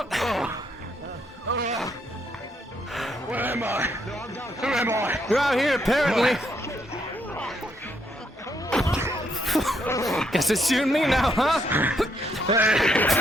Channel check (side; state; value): both; normal; correlation 0.74